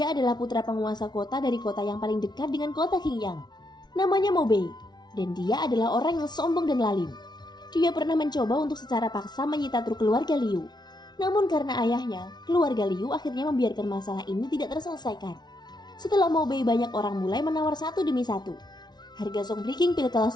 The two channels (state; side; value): late; right; 0.20 ms